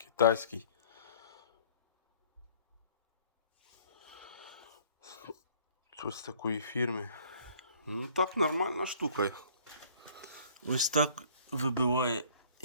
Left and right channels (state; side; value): inverted; both; correlation -0.56